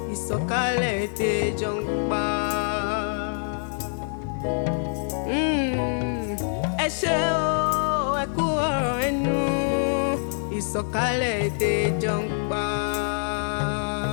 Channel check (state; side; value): silent; right; digital silence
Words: Ìsọ̀kalẹ̀ ètè jọ ń pa. Ẹ ṣé o, ẹ kú ọ̀rọ̀ ẹnu. Ìsọ̀kalẹ̀ èdè jọ ń pa.